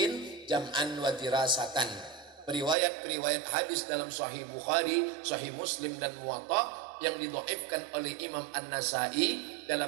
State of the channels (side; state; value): left; drops out; at 2.8 s